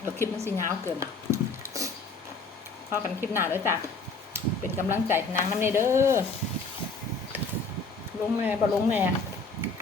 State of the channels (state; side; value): quieter; right; 3.9 dB